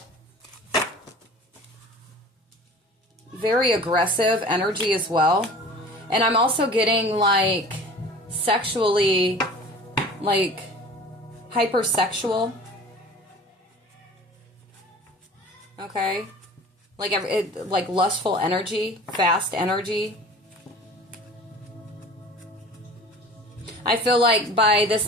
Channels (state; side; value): normal; both; correlation 0.43